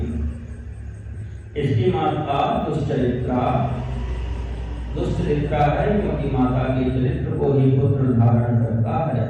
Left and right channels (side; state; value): both; identical; correlation 1.00